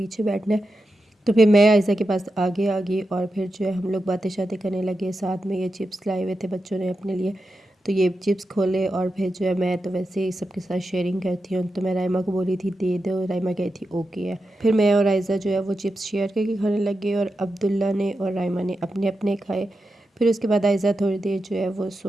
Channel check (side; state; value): both; normal; correlation 0.89